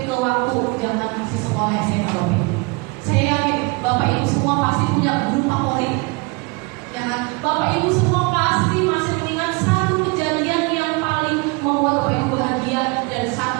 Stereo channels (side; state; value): left; quieter; 28.6 dB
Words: ke waktu zaman masih sekolah SMA Bapak Ibu. Saya yakin Bapak Ibu semua pasti punya guru favorit. Ya kan? Bapak Ibu semua pasti masih mengingat satu kejadian yang paling membuat Bapak Ibu bahagia dan